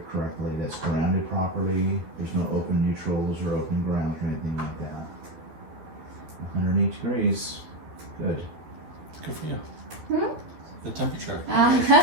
correctly, that's grounded properly, there's no open neutrals or open ground or anything like that. 108 degrees, good. Good for you. The temperature. I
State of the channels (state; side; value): late; left; 12 ms